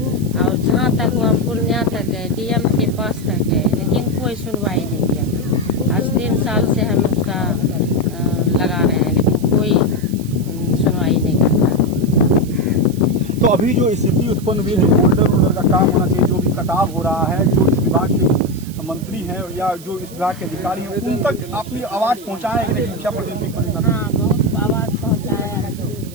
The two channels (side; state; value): right; noise; hiss, 19 dB below the sound